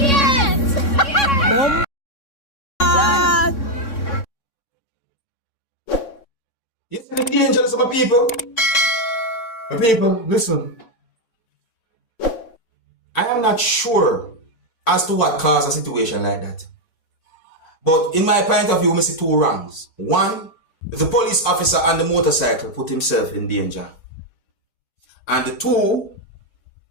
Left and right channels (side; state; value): right; late; 3.6 ms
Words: Bomb. You see the dangers of my people? My people, listen. I am not sure as to what caused a situation like that. But in my point of view, I see two wrongs. One, the police officer on the motorcycle put himself in danger. And two,